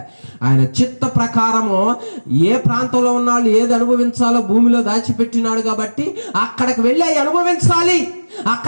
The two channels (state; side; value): inverted; both; correlation -1.00